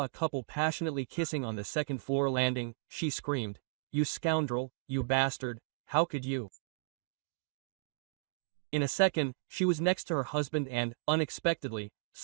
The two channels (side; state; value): left; silent; digital silence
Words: a couple passionately kissing on the second-floor landing, she screamed, "You scoundrel, you bastard, how could you?" In a second, she was next to her husband and, unexpectedly,